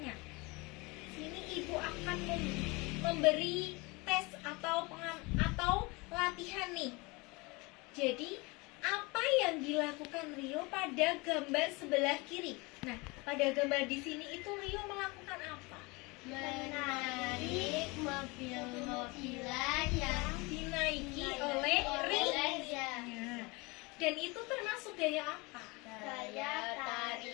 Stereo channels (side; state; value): right; quieter; 26.0 dB